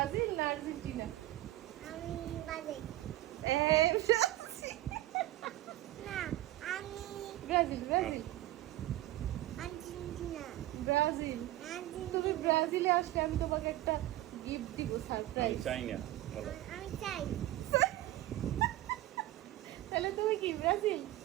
না Argentina? আমি Brazil. না, আমি ব্রাজিল ব্রাজিল আর্জেন্টিনা। ব্রাজিল। তুমি ব্রাজিলে আসলে আমি তোমাকে একটা গিফট দিব, আমি সারপ্রাইজ। চাই না বলো। আমি চাই। তাহলে তুমি কি ব্রাজিল?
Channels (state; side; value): quieter; left; 15.8 dB